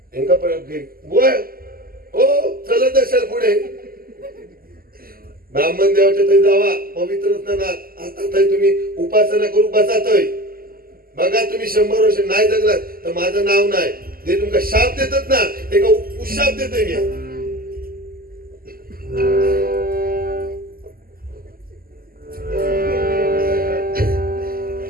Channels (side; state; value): left; late; 0.42 ms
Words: हो चलत असेल पुढे ब्राह्मण देवाच्या तरी जावा पवित्र स्नानात. आता तरी तुम्ही उपासना करू बसातय. बघा तुम्ही 100 वर्ष नाही जगलात तर माझं नाव नाही. जे तुमका शाप देतात ना ते का उशाप देतोय मी.